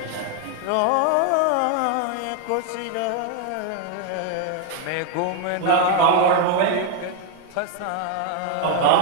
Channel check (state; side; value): different; both; correlation 0.00